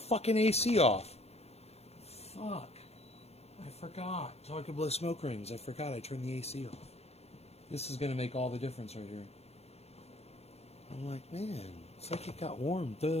AC off. Fuck. I forgot. So I could blow smoke rings. I forgot I turned the AC off. This is going to make all the difference right here. I'm like, man, it's like it got warm.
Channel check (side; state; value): right; late; 0.31 ms